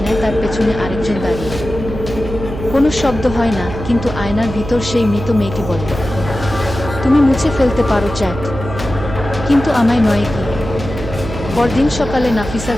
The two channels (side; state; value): right; noise; hum, 8 dB below the sound